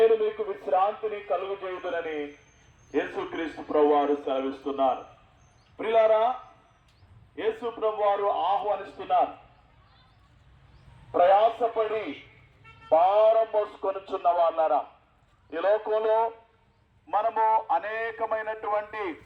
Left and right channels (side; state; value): both; identical; correlation 1.00